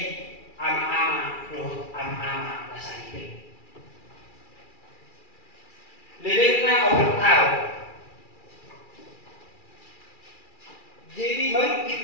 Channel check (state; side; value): late; right; 2.4 ms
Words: ama-ama roh ama-ama nasa hidup lelekna orang tahu jadi merikit